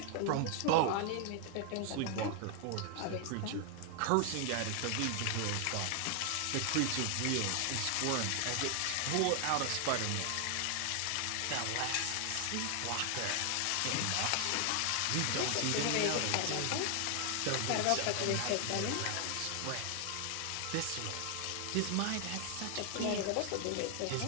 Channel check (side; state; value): both; different; correlation 0.00